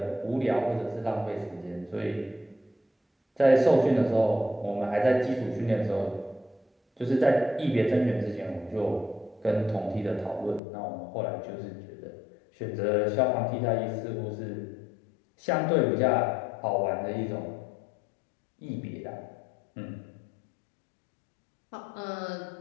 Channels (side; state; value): right; drops out; at 10.6 s